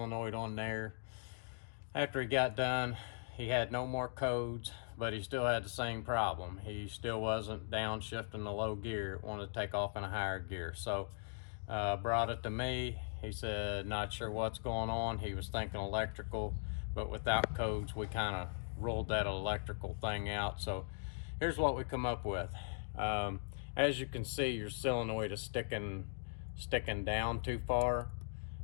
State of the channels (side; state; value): right; silent; digital silence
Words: on there. After he got done, he had no more codes, but he still had the same problem. He still wasn't downshifting the low gear. It wanted to take off in a higher gear. So brought it to me. He said, not sure what's going on. He was thinking electrical, but without codes, we kind of ruled that electrical thing out. So here's what we come up with. As you can see, your solenoid is sticking down too far.